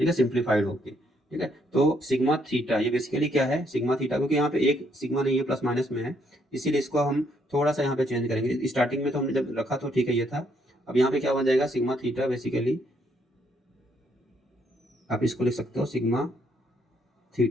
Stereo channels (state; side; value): normal; both; correlation 0.71